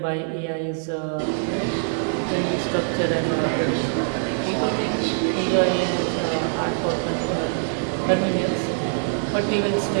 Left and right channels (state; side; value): silent; left; 59 dB below the other